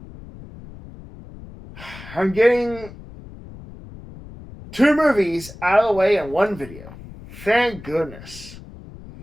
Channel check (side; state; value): left; noise; rumble, 16 dB below the sound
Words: I'm getting two movies out of the way in one video. Thank goodness.